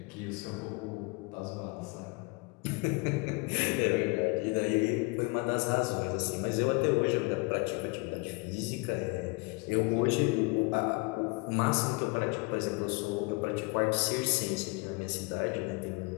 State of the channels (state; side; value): quieter; right; 28.1 dB